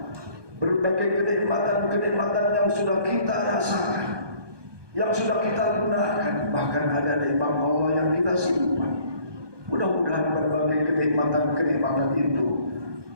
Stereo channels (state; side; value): late; left; 1.2 ms